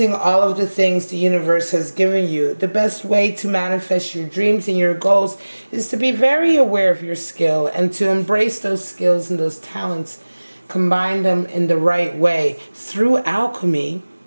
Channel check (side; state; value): both; inverted; correlation -1.00